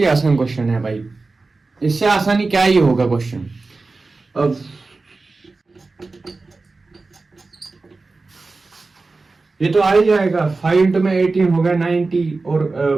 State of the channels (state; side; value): quieter; left; 3.7 dB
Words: आसान क्वेश्चन है भाई, इससे आसानी क्या ही होगा क्वेश्चन। अब ये तो आ ही जाएगा, 5 इंटू में 18 हो गया 90, और